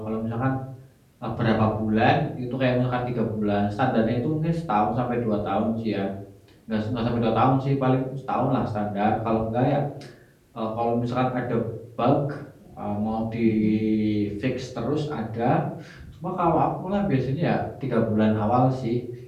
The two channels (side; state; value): both; identical; correlation 1.00